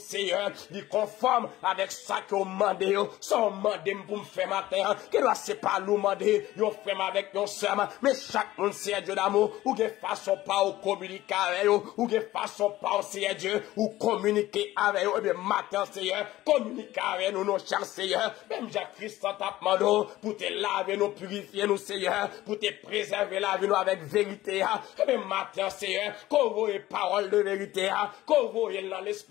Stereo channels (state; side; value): quieter; right; 16.0 dB